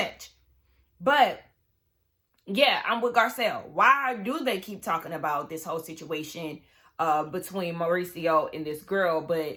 But yeah, I'm with Garcelle. Why do they keep talking about this whole situation between Mauricio and this girl?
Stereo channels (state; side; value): identical; both; correlation 1.00